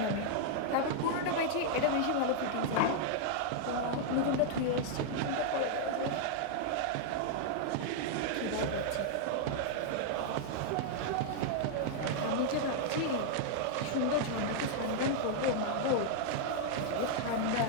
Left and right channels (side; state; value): both; different; correlation -0.01